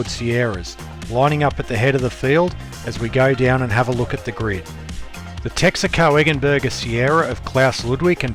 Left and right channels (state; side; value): identical; both; correlation 1.00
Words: Sierras, lining up at the head of the field as we go down and have a look at the grid. The Texaco Eggenberger Sierra of Klaus Ludwig